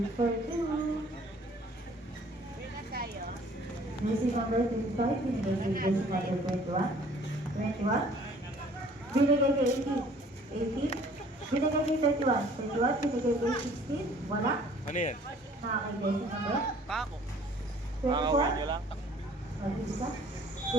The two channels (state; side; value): normal; both; correlation 0.54